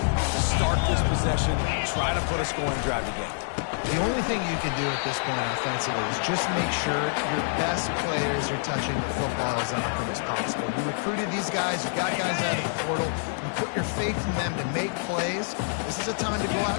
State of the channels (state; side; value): silent; right; digital silence